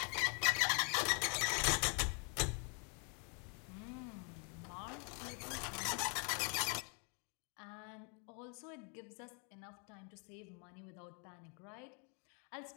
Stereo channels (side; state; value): right; quieter; 37.9 dB